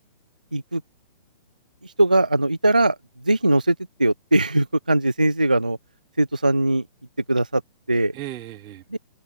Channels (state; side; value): inverted; both; correlation -0.93